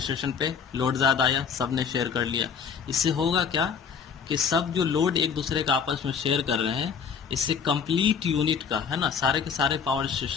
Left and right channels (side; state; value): right; quieter; 6.6 dB